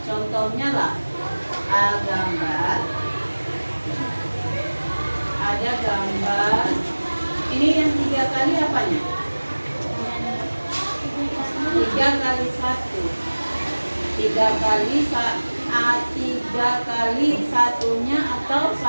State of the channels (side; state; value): both; inverted; correlation -1.00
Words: contohnya lah gambar, ada gambar ini yang 3 kali apanya? 3 kali 1 3 kali 3 kali satunya atau